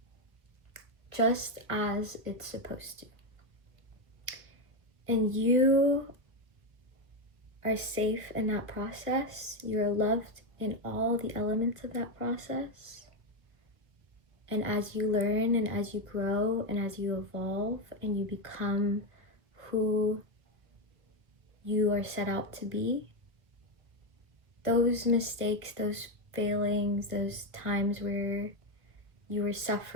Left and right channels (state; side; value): late; left; 1.8 ms